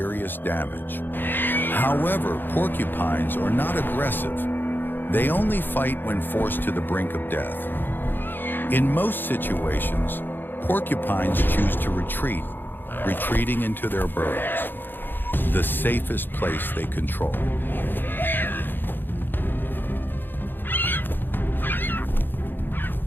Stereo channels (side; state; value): right; late; 0.095 ms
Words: damage. However, porcupines are not aggressive. They only fight when forced to the brink of death. In most situations, porcupines choose to retreat, retreating into their burrows, the safest place they control.